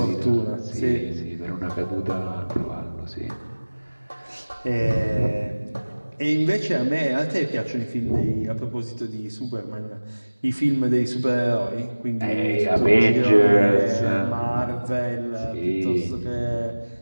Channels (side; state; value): both; inverted; correlation -1.00